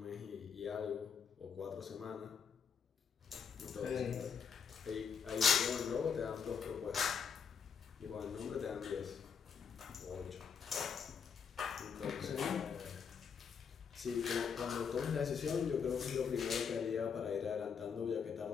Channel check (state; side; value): quieter; right; 6.7 dB